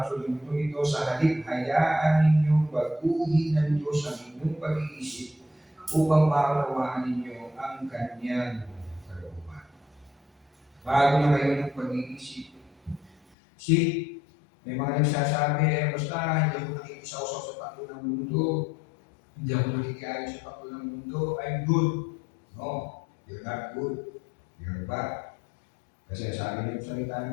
takbo ng mundo ito. Sa halip, hayaan ninyong baguhin ng Diyos ang inyong pag-iisip upang maunawaan ninyo ang kanyang kalooban. Bago na kayo ng pag-iisip. See, may mga nagsasabi, basta hindi ako nakikisaw-saw sa takbo ng mundo. Hindi ako nakikialam sa takbo ng mundo. I'm good. No, you're not good. You're bad. Kasi sabi niyo sa salita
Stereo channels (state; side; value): drops out; right; at 13.2 s